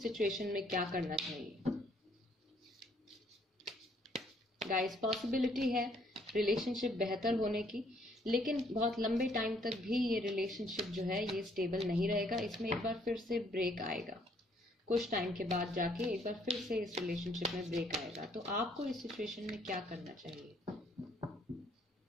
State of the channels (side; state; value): both; normal; correlation 0.65